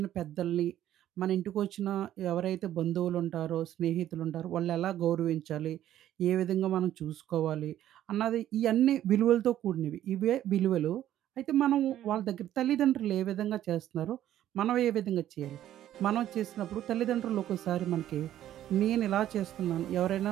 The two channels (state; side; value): quieter; left; 12.1 dB